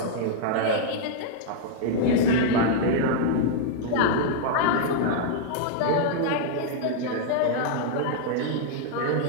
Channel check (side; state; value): both; different; correlation -0.01